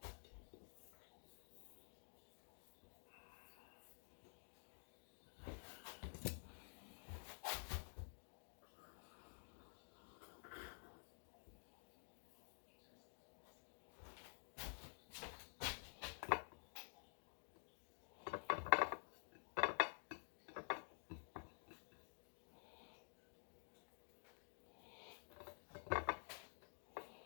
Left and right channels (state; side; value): silent; right; digital silence